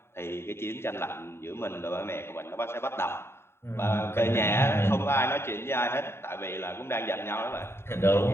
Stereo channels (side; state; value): right; late; 0.12 ms